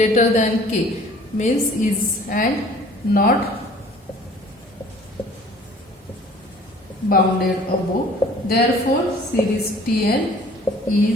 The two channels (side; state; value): both; normal; correlation 0.51